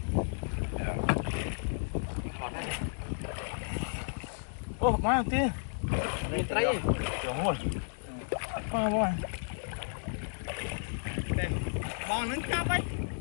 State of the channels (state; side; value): silent; right; digital silence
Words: Ô, má tía. Nhìn thấy. Trời ơi. Má bò. Bò nướng chắp ấy.